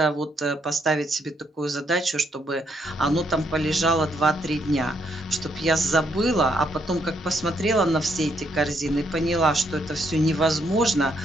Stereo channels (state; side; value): normal; both; correlation 0.74